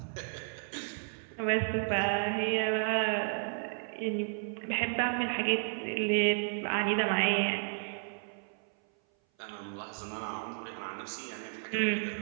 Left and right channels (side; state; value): left; silent; 56 dB below the other